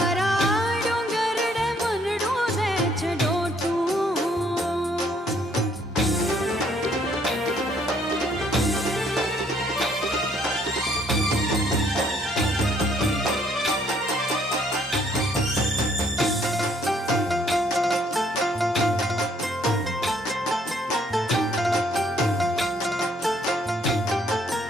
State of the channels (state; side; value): normal; both; correlation 0.66